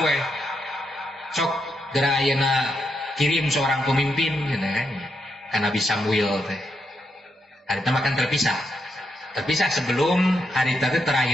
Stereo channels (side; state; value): both; normal; correlation 0.81